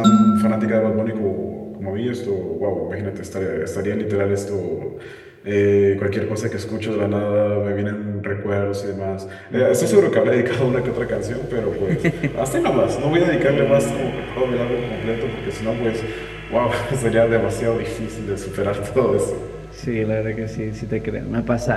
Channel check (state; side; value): identical; both; correlation 1.00